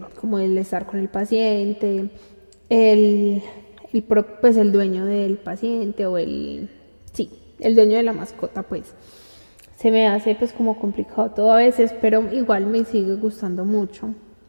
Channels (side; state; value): both; inverted; correlation -1.00